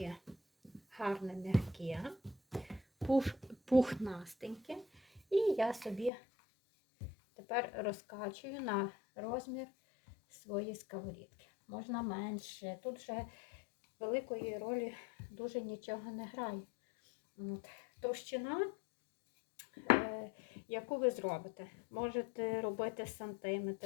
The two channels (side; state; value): right; drops out; at 6.1 s